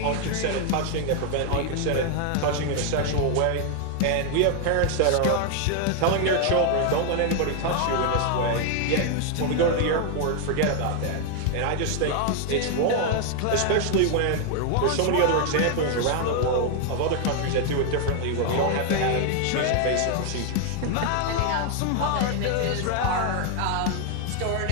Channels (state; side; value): different; both; correlation 0.00